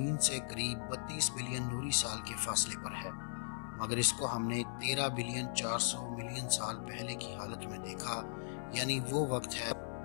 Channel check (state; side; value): silent; right; 52 dB below the other